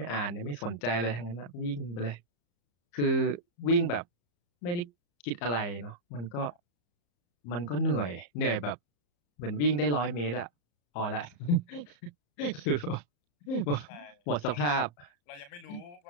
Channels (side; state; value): right; late; 34 ms